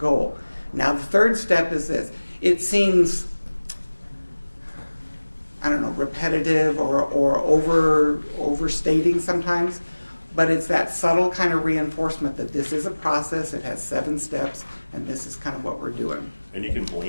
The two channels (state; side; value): inverted; both; correlation -1.00